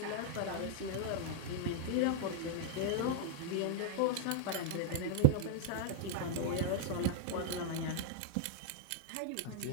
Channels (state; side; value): different; both; correlation -0.01